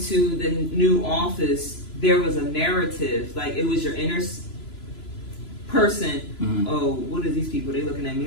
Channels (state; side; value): late; right; 3.0 ms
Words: the new office, there was a narrative. Like it was your inner person. Oh, what are these people? They looking at me